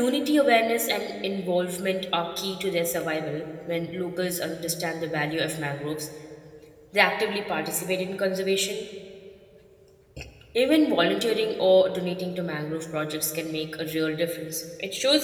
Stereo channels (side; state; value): both; identical; correlation 1.00